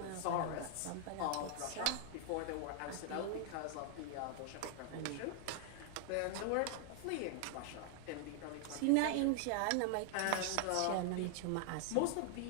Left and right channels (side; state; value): both; different; correlation 0.00